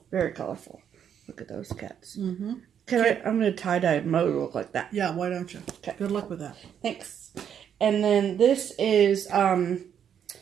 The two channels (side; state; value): left; quieter; 8.7 dB